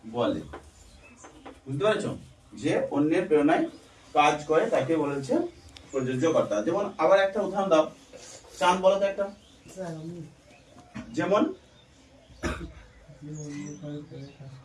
বলে। বুঝতে পারছো? যে অন্যের প্রেরণায় কাজ করে তাকে বলেছে প্রযোজ্য কর্তা। যেমন আবার একটা উদাহরণ দাও, চান বলো তো একটা। যেমন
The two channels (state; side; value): identical; both; correlation 1.00